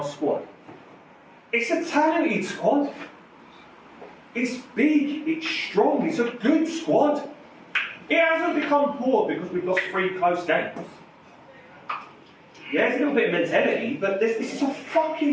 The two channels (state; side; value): identical; both; correlation 1.00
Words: squad, it's a talented squad. It's big, it's strong, it's a good squad. It hasn't become poor because we've lost 3 close games. Yeah, it's a little bit of mentality, but this is a